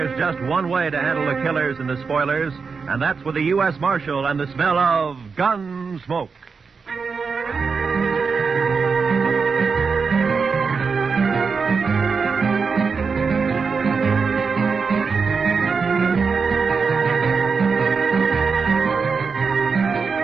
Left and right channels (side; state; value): left; quieter; 5.2 dB